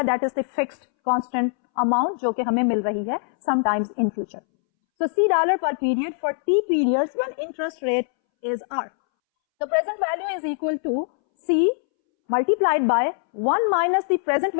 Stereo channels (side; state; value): right; silent; 63 dB below the other